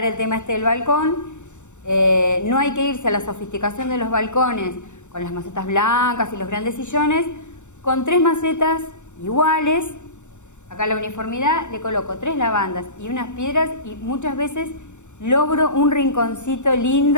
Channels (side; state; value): right; late; 0.84 ms